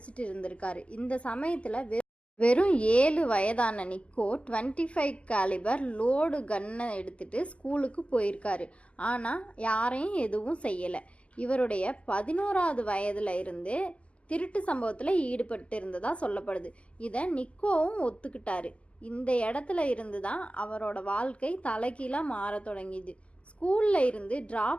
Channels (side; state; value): right; late; 0.062 ms